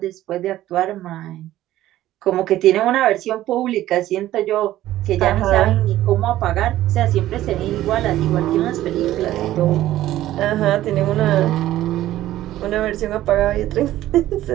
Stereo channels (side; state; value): left; quieter; 14.2 dB